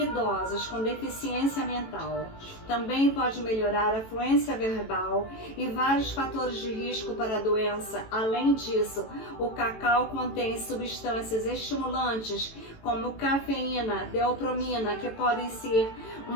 idosos com deficiência mental. Também pode melhorar a fluência verbal e vários fatores de risco para a doença. Além disso, o cacau contém substâncias estimulantes como cafeína, deopromina, que podem ser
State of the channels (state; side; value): late; right; 18 ms